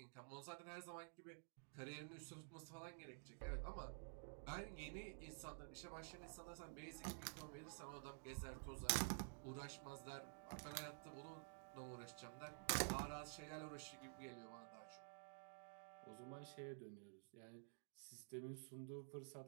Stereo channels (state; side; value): silent; left; digital silence